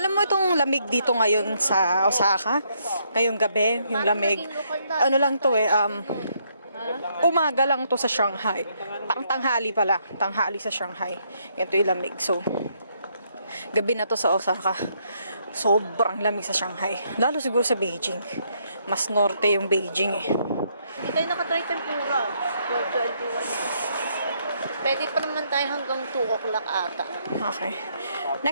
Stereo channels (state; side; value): inverted; both; correlation -0.73